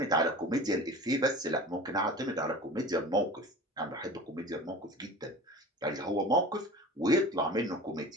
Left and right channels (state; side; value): normal; both; correlation 0.37